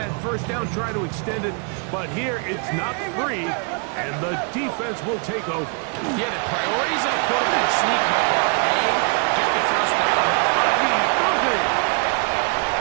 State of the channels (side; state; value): left; quieter; 36.6 dB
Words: first down, try to extend it. But here, it's not free, and the defense will take over. Yeah, the priorities of quarterback sneak, Mike, are A, get the first down. Bucky Irving